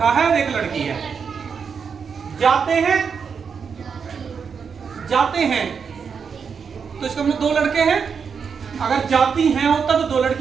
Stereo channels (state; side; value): quieter; left; 6.2 dB